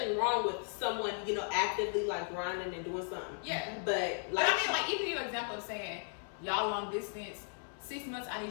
wrong with someone, actively like grinding and doing something. Yeah. But I mean, like even your example of saying y'all long distance, 6 months, I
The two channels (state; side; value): silent; right; 54 dB below the other